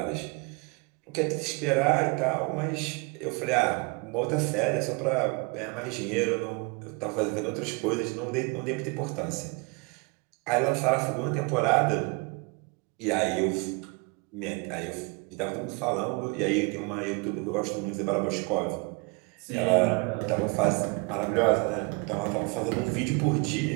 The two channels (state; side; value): quieter; left; 30.1 dB